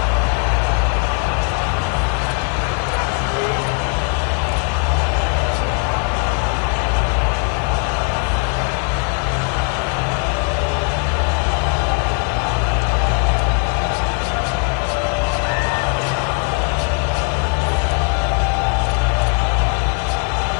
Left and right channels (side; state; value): right; quieter; 34.9 dB